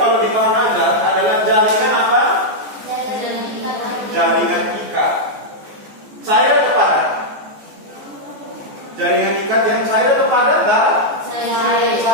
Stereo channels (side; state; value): left; late; 14 ms